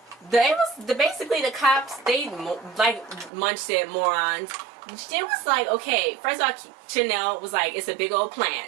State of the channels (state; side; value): drops out; left; at 3.3 s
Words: basically the cops, they like Munch said, morons. It was like, okay, first of all, Chanel was like, it's a big old